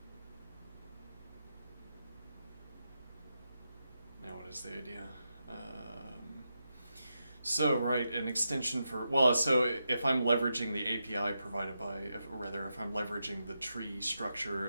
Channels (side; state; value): both; inverted; correlation -0.87